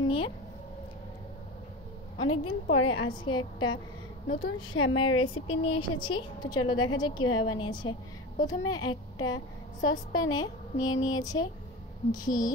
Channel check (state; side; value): normal; both; correlation 0.28